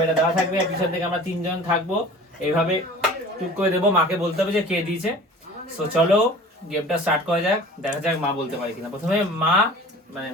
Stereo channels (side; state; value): both; normal; correlation 0.43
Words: এটা দেওয়া থাকবে, পিছন থেকে আমরা তিনজন থাকবো, এইভাবে টুক করে দেবো, মাকে বলতে হবে যে কে দিয়েছে। সো চলো গেমটা স্টার্ট করা যাক, দেখা যাক মা বলতে পারে কিনা। প্রথমে মা মানে